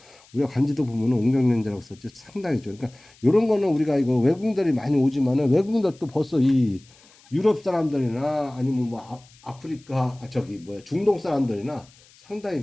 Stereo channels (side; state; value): left; noise; hiss, 27 dB below the sound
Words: 우리가 관지도 보면은 웅정연대라고 썼죠. 상당히 좋아요. 그러니까 이런 거는 우리가 이거 외국인들이 많이 오지만은 외국인들도 벌써 이 유럽 사람들이나 아니면 뭐 아프리카 저기 뭐야 중동 사람들이나 상당히